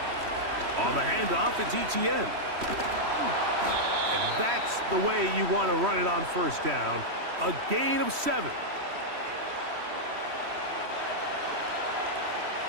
the handoff, it's ETN. And that's the way you want to run it on first down. A gain of 7.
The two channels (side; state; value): left; late; 3.1 ms